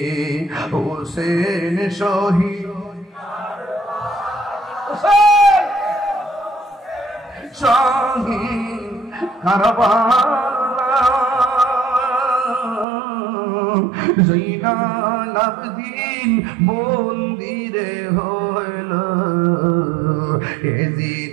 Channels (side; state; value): left; drops out; at 12.9 s